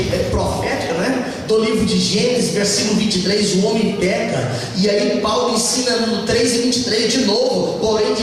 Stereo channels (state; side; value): identical; both; correlation 1.00